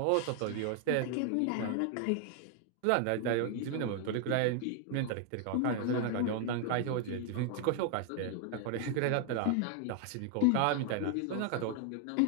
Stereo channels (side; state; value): both; different; correlation 0.00